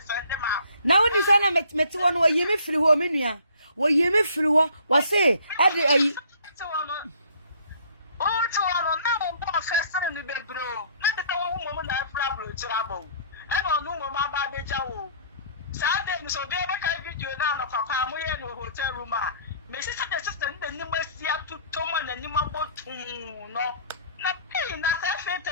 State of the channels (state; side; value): inverted; both; correlation -0.56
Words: them out? Now when you say na met one wo yimi free ho me nua. Wo yimi free ho, wa say, ade oh, to one now one first in the bed, bro. Not the one woman that problem trouble. And on no mama baby jaw. Saturday, so they make a video down of a family in a hotel room. Mrs. Assistant, the new Messia to Tom and the new boat. No, nothing. That's a fit.